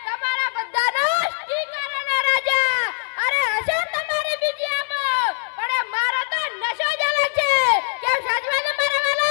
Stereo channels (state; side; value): silent; right; digital silence